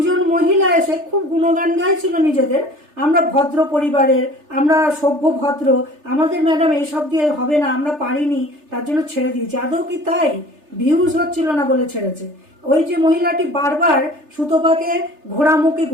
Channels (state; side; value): late; left; 3.3 ms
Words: মহিলা এসে খুব গুণগান গাইছিল নিজেদের, আমরা ভদ্র পরিবারের, আমরা সভ্য ভদ্র, আমাদের ম্যাডাম এইসব দিয়ে হবে না, আমরা পারিনি, তার জন্য ছেড়ে দিয়েছি। আদৌ কি তাই? ভিউজ হচ্ছিল না বলে ছেড়েছে। ওই যে মহিলাটি বারবার সুতপাকে